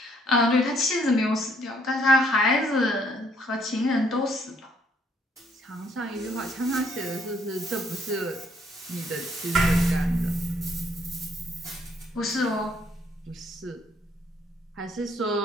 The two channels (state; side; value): normal; both; correlation 0.67